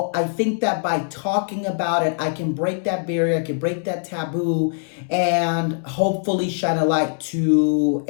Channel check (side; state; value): right; silent; 64 dB below the other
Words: I think that by talking about it, I can break that barrier, I can break that taboo, and hopefully shine a light to